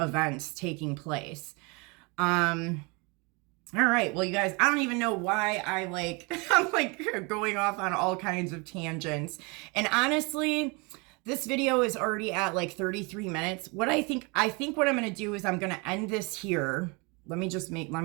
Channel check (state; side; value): quieter; left; 29.3 dB